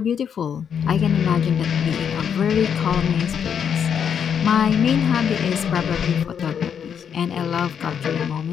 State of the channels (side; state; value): right; quieter; 7.8 dB